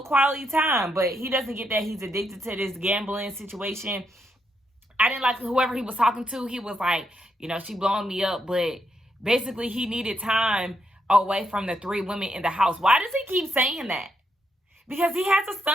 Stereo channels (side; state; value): both; normal; correlation 0.79